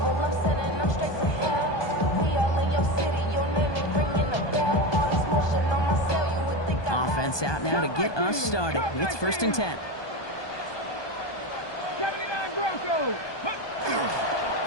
Offense out now to get us started. It's 1st and 10.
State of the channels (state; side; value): late; right; 1.2 ms